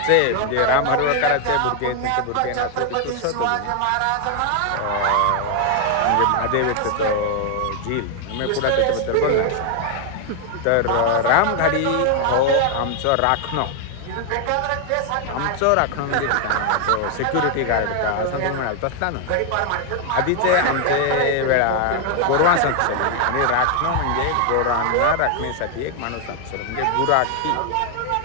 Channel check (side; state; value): both; different; correlation 0.00